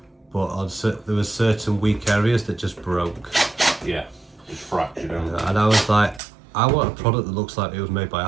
But there was certain weak areas that just broke. Yeah, just fractured out. And I was like, I want a product that looks like it was made by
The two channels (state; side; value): drops out; left; at 6.2 s